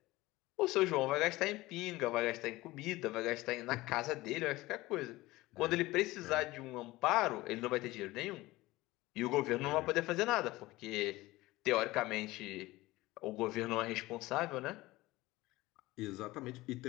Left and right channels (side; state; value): right; quieter; 19.2 dB